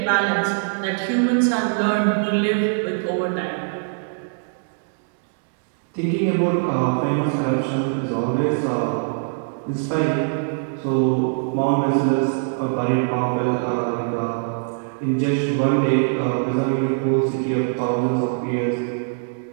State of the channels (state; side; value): silent; left; digital silence